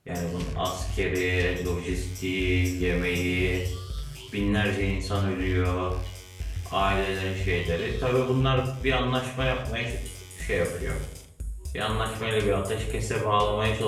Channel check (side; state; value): both; identical; correlation 1.00